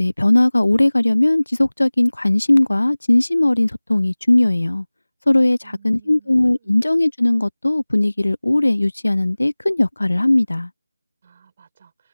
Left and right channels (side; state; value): both; inverted; correlation -1.00